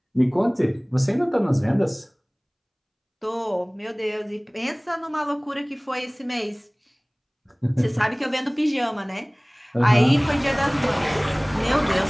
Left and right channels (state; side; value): identical; both; correlation 1.00